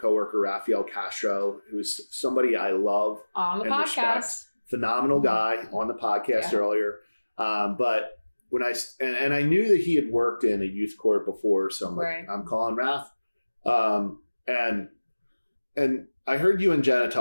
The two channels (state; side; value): inverted; both; correlation -1.00